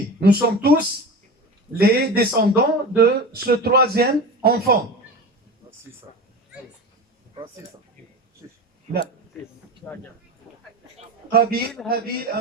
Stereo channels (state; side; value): normal; both; correlation 0.29